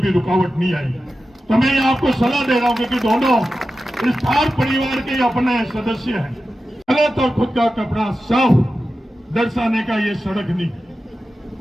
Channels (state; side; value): normal; both; correlation 0.92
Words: भी रुकावट नहीं आई। तो मैं ये आपको सलाह दे रहा हूं कि दोनों इस थार परिवार के अपने सदस्य हैं। गलत और खुद का कपड़ा साफ दर्शाने का ये सड़क नहीं।